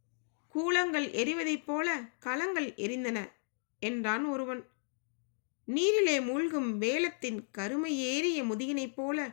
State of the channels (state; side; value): silent; right; digital silence